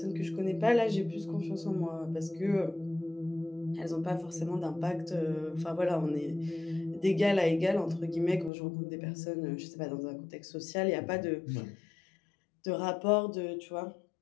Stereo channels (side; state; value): right; drops out; at 8.5 s